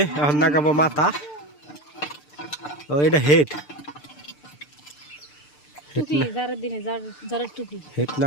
এখন লাগাবো মাথা। ও এটা হেড হেড না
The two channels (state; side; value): late; right; 6.8 ms